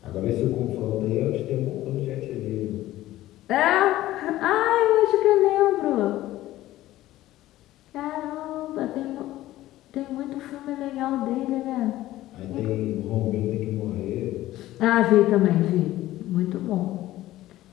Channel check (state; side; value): quieter; right; 15.4 dB